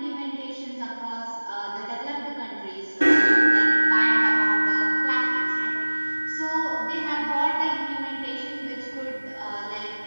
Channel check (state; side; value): inverted; both; correlation -1.00